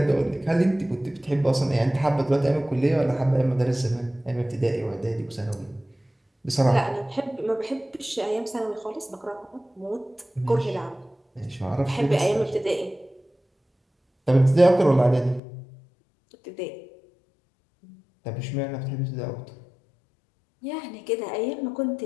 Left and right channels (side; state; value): right; drops out; at 15.4 s